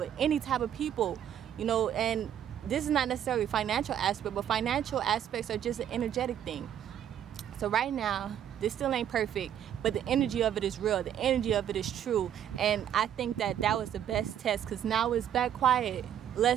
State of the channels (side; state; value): left; quieter; 10.0 dB